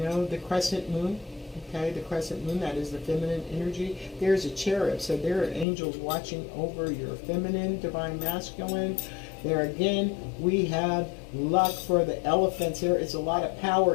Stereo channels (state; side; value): drops out; right; at 5.7 s